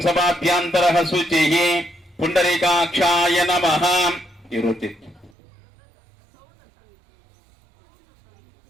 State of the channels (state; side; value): drops out; left; at 5.3 s